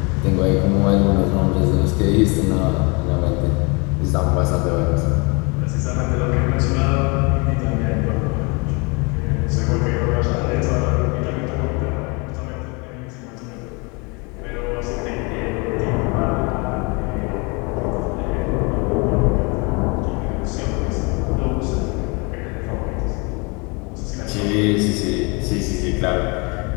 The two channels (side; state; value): right; quieter; 30.0 dB